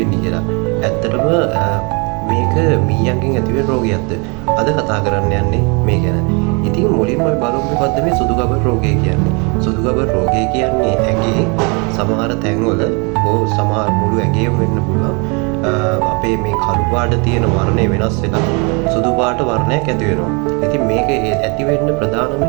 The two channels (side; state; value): left; quieter; 31.9 dB